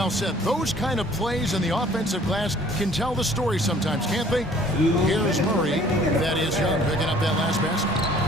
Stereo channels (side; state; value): both; normal; correlation 0.55